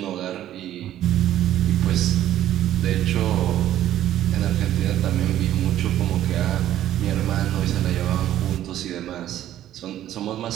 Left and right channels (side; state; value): left; quieter; 12.4 dB